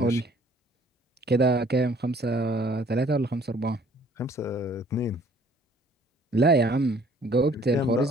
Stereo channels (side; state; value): both; normal; correlation 0.58